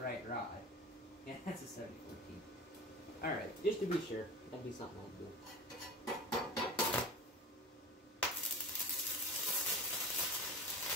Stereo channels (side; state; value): both; normal; correlation 0.33